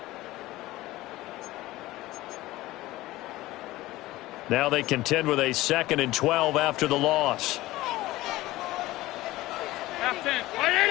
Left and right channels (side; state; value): right; quieter; 17.6 dB